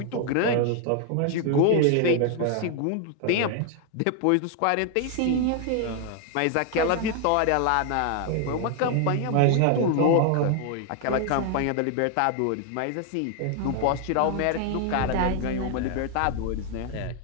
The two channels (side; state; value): both; different; correlation 0.00